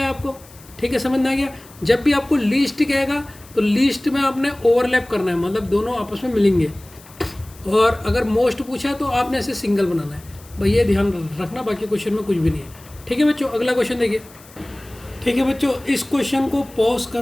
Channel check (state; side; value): noise; left; hiss, 23 dB below the sound